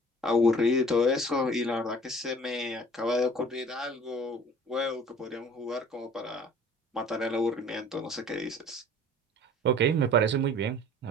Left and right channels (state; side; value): normal; both; correlation 0.48